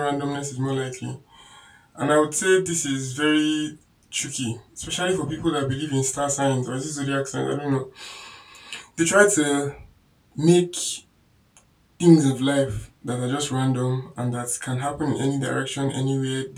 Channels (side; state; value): both; identical; correlation 1.00